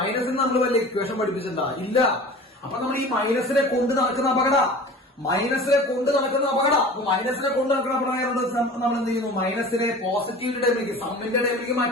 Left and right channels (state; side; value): normal; both; correlation 0.40